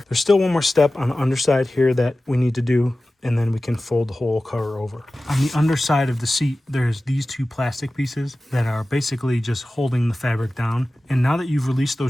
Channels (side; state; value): both; normal; correlation 0.96